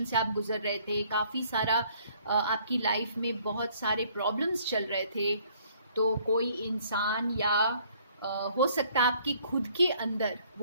से आप गुजर रहे थे, काफ़ी सारा आपकी लाइफ में बहुत सारे प्रॉब्लम्स चल रहे थे, तो कोई इंसान या हो सकता है आपके खुद के अंदर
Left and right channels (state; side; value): inverted; both; correlation -0.61